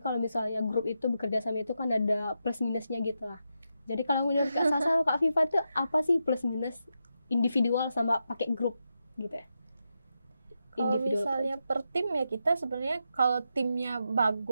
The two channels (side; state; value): both; inverted; correlation -0.86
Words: misalnya grup itu bekerja sama itu kan ada plus minusnya gitu lah. Jadi kalau menurut Kak Sasa sama Kak Viva tuh apa sih plus minus individual sama pakai grup gitu ya? Kalau Individual misalnya per tim ya kita sebenarnya kalau timnya